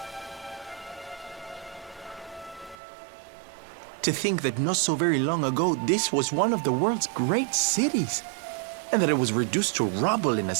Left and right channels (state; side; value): drops out; left; at 2.8 s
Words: To think that not so very long ago, this was one of the world's great cities, and that it was reduced to rubble in a